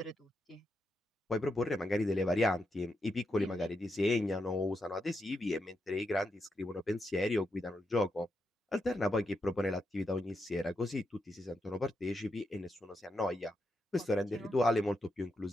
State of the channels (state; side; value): normal; both; correlation 0.83